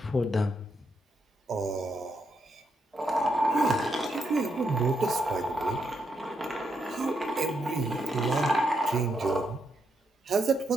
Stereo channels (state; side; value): normal; both; correlation 0.80